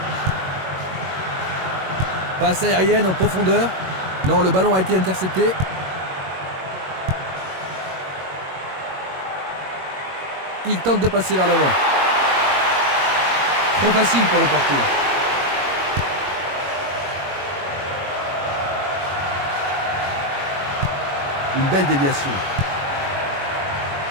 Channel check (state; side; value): late; left; 21 ms